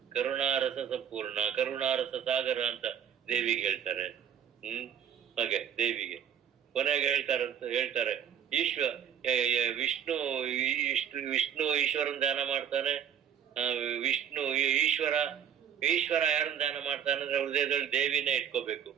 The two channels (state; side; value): quieter; left; 8.8 dB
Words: ಕರುಣಾರಸ ಸಂಪೂರ್ಣ, ಕರುಣಾರಸ ಸಾಗರ ಅಂತ ದೇವಿಗೆ ಹೇಳ್ತಾರೆ. ಹಾಗೆ ದೇವಿಗೆ ಕೊನೆಗೆ ಹೇಳ್ತಾರೆ ವಿಷ್ಣು ಈಶ್ವರನ್ ಧ್ಯಾನ ಮಾಡ್ತಾನೆ. ವಿಷ್ಣು ಈಶ್ವರ ಯಾರನ್ನ ಧ್ಯಾನ ಮಾಡ್ತಾನೆ ಅಂದ್ರೆ ಹೃದಯದಲ್ಲಿ ದೇವಿನೇ ಇಟ್ಕೋಬೇಕು